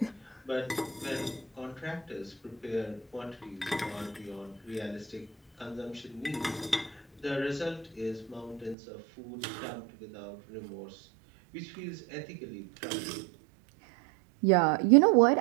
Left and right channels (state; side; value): drops out; left; at 8.8 s